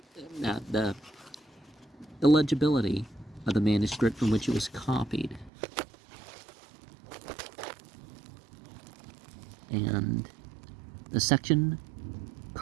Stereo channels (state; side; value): drops out; left; at 5.5 s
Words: illegibility of the manuscript from which it was copied. And the section